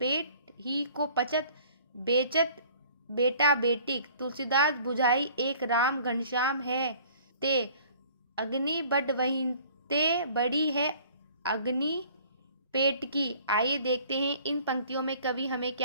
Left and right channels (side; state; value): both; inverted; correlation -0.52